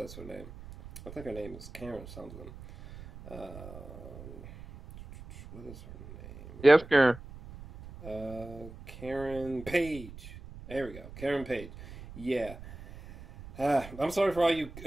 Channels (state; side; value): noise; right; rumble, 15 dB below the sound